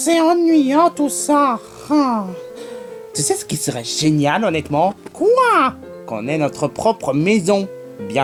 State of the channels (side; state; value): both; identical; correlation 1.00